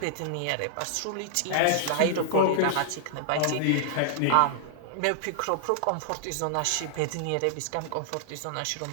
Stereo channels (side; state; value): both; different; correlation -0.01